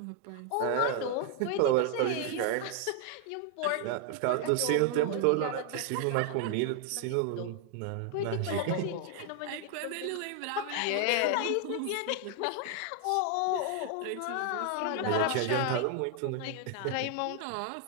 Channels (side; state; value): both; different; correlation 0.00